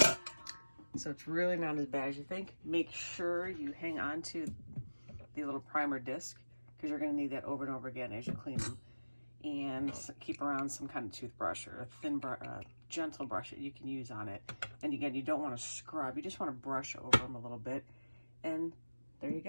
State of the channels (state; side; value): inverted; both; correlation -1.00